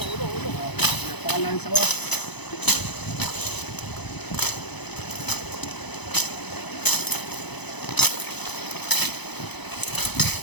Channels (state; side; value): late; right; 0.99 ms